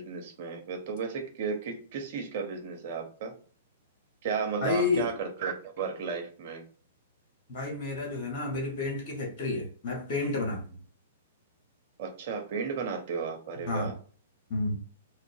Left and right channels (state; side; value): inverted; both; correlation -0.32